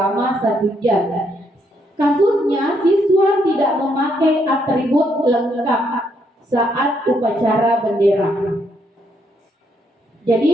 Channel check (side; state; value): both; normal; correlation 0.74